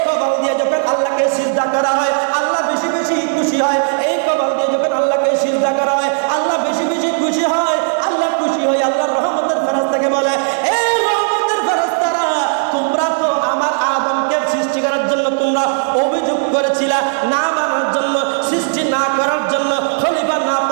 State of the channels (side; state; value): left; silent; digital silence